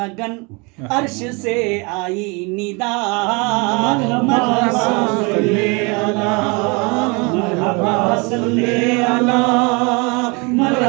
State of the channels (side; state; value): left; quieter; 29.3 dB